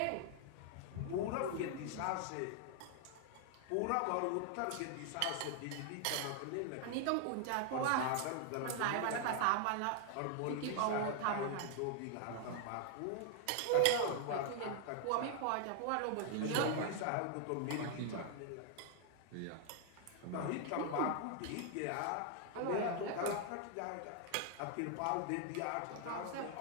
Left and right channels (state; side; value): different; both; correlation 0.00